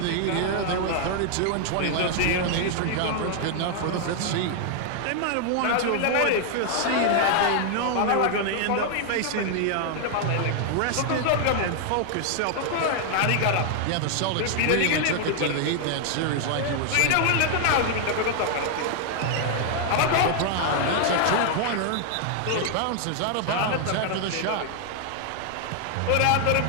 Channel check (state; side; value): different; both; correlation 0.00